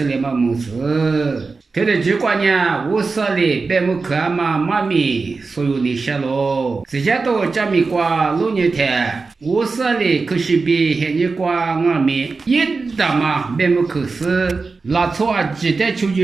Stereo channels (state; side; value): quieter; left; 4.2 dB